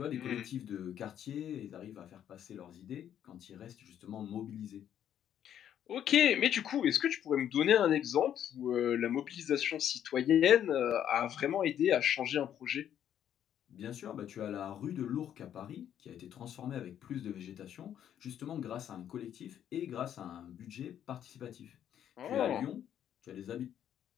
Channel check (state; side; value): quieter; right; 10.0 dB